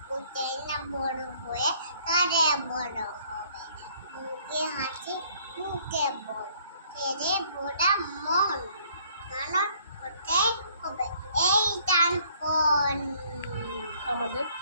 কোথায় না বড় হয়ে কারে বড় হবে। মুখে হাসি মুখে বল ছেলে বোড়া মন মানুষ হতে হবে এই টান কোন আমাদের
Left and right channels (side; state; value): both; inverted; correlation -0.61